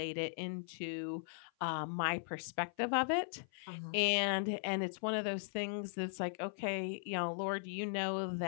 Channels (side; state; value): right; silent; 52 dB below the other